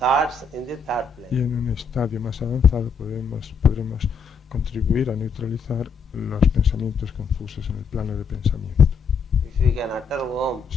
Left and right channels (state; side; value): quieter; right; 5.1 dB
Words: in the thought Y plane. en un estadio más avanzado podremos contribuir a neutralizar los pensamientos confusos en el plano de pensamiento. If you can utter Om